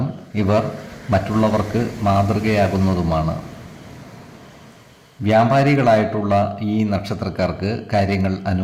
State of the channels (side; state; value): both; identical; correlation 1.00